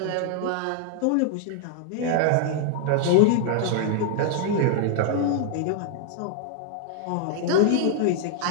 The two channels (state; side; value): different; both; correlation -0.01